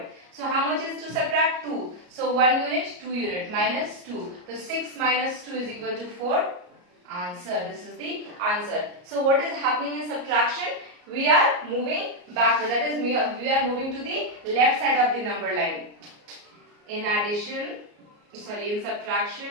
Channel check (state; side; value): late; left; 34 ms